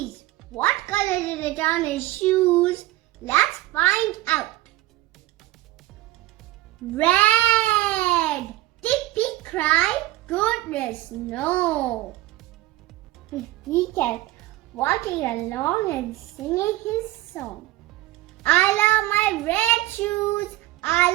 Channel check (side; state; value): left; quieter; 16.8 dB